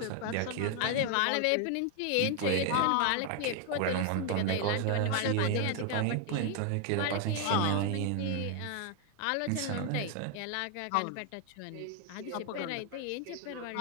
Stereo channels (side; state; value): both; different; correlation 0.00